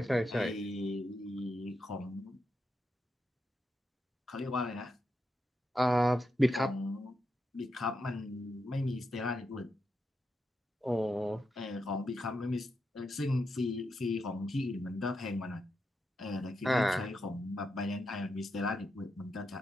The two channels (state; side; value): normal; both; correlation 0.85